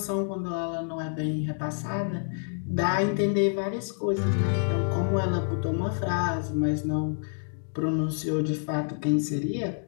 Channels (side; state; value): right; silent; digital silence